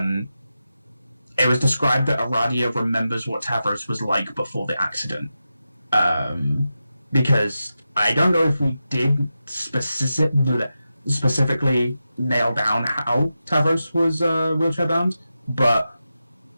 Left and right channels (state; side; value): inverted; both; correlation -0.91